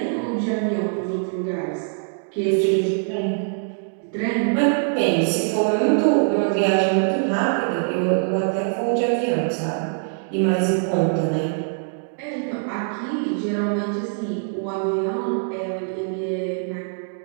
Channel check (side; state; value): left; silent; digital silence